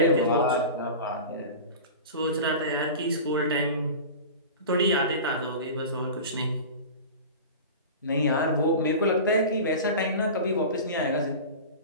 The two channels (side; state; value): both; inverted; correlation -0.32